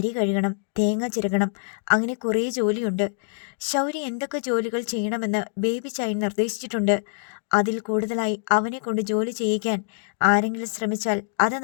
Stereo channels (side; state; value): right; silent; digital silence